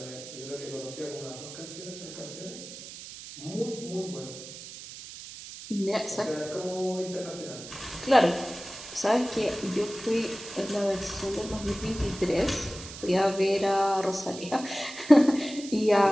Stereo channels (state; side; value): noise; right; hiss, 13 dB below the sound